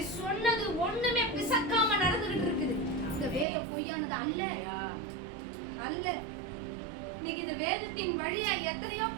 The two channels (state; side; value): drops out; left; at 3.5 s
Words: சொன்னது ஒண்ணுமே பிசக்காம நடந்துகிட்டு இருக்குது. இந்த வேதம் பொய்யானது அல்ல, அல்ல. இன்னைக்கு இந்த வேதத்தின் வழியா எத்தனையோ